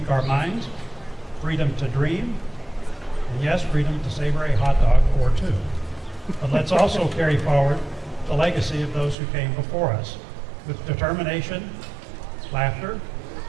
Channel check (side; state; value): left; drops out; at 9.2 s